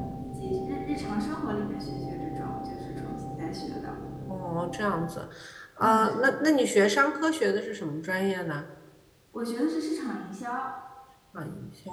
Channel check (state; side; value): identical; both; correlation 1.00